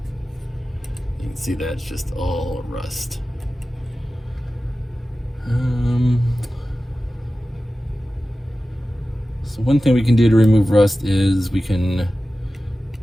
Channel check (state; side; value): normal; both; correlation 0.95